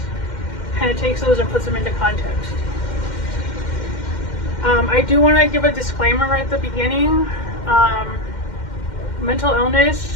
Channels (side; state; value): right; late; 2.1 ms